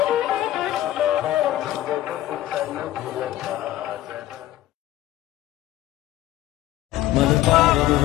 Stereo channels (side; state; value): right; quieter; 14.4 dB